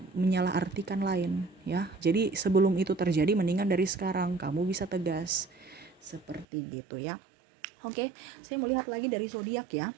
menyalahartikan lain ya. Jadi sebelum itu terjadi, mendingan dari sekarang kamu bisa tegas. Seperti gitu ya. Oke, saya melihat lagi dari zodiak ya.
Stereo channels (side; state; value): left; drops out; at 6.5 s